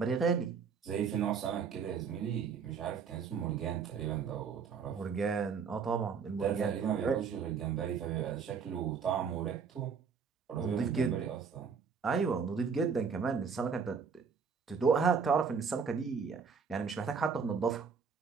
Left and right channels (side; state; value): left; quieter; 6.1 dB